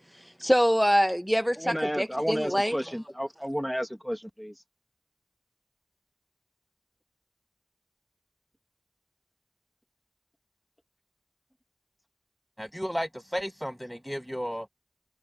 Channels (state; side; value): identical; both; correlation 1.00